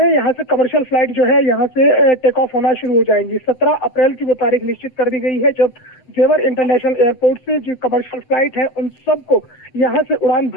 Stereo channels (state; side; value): late; right; 7.7 ms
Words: यहाँ से कमर्शियल फ्लाइट जो है यहाँ से टेक ऑफ होना शुरू हो जाएंगी। 17 अप्रैल की वो तारीख निश्चित कर दी गई है जब जेवर इंटरनेशनल एयरपोर्ट से जो कमर्शियल फ्लाइट है उन सबको यहाँ से उड़ान